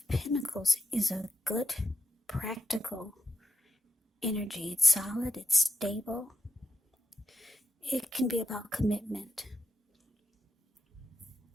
Pentacles is a good, practical energy. It's solid, it's stable. It can be about commitment.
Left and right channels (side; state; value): both; normal; correlation 0.84